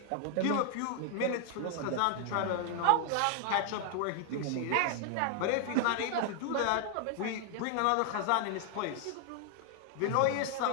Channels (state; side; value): different; both; correlation 0.00